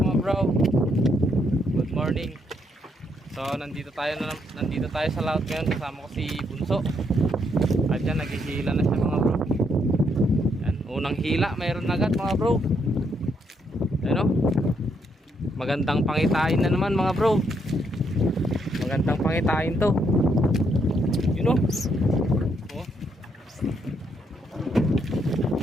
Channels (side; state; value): both; normal; correlation 0.75